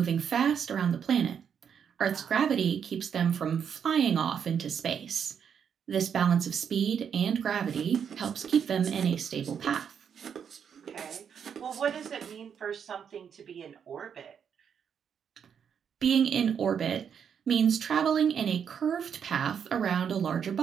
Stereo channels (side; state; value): left; quieter; 7.6 dB